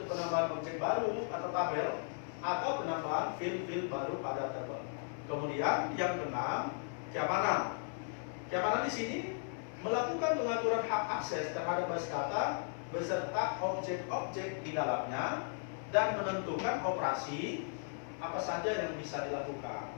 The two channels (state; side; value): silent; right; 53 dB below the other